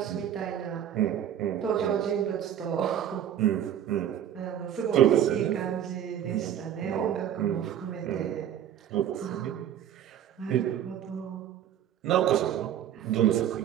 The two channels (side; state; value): left; quieter; 10.2 dB